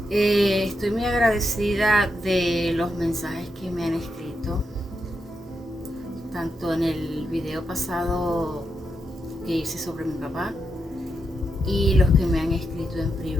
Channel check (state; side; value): normal; both; correlation 0.84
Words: estoy muy agradecida de los mensajes que me han escrito, tanto en el video pasado que hice sobre mi papá y los que me han escrito en